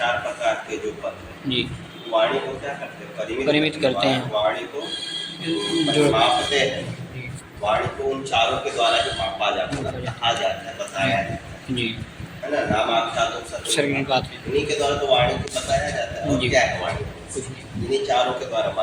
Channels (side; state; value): both; identical; correlation 1.00